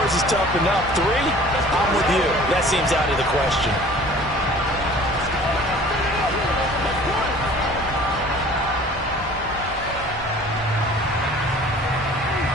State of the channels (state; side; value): normal; both; correlation 0.48